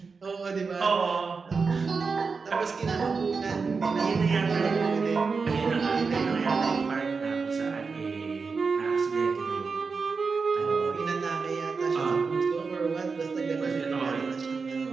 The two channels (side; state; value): left; quieter; 4.8 dB